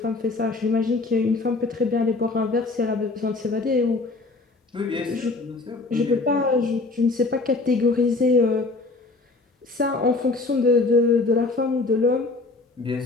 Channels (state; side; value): quieter; right; 3.5 dB